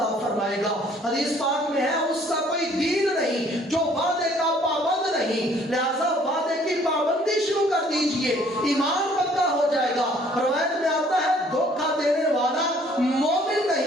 فرمائے گا۔ حدیث پاک میں ہے اس کا کوئی دین نہیں جو وعدے کا پابند نہیں، لہذا وعدے کی پابندی شروع کر دیجئے، ایمان پکا ہو جائے گا۔ روایت میں آتا ہے دھوکہ دینے والا مومن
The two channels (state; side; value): normal; both; correlation 0.59